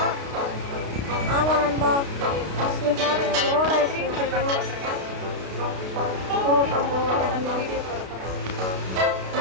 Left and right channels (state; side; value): late; left; 32 ms